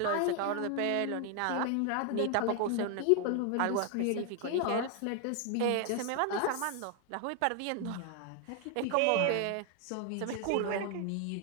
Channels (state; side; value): different; both; correlation 0.00